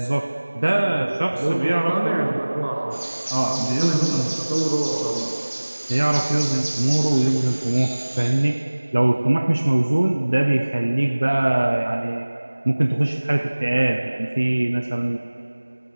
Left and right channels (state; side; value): inverted; both; correlation -1.00